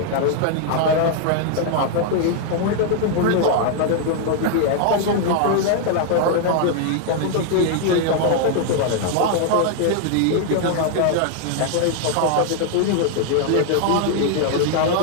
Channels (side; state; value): both; different; correlation 0.00